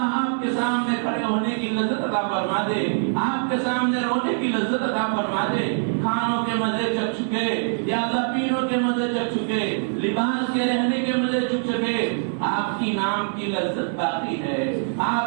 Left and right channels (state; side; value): silent; left; digital silence